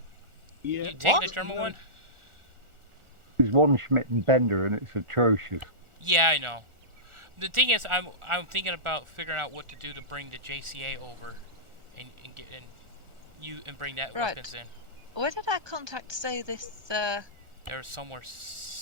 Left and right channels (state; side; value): late; left; 1.4 ms